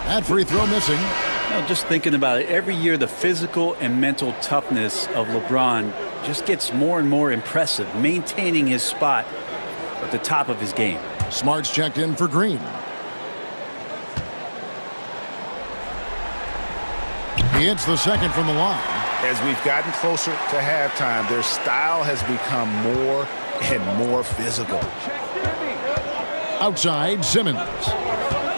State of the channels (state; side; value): inverted; both; correlation -1.00